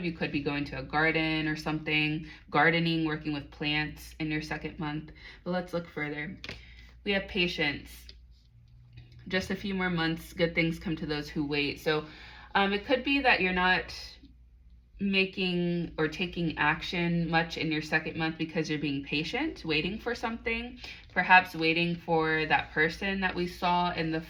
you could be going to a garden or something, gardening, working with plants in your second month. But let's look further. We have patience. Just a few more months, good things come to those who wait. So it could be that you're not making or taking action much in your second month because you're being patient, waiting for something, perhaps waiting for that person that we saw in the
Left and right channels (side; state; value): both; identical; correlation 1.00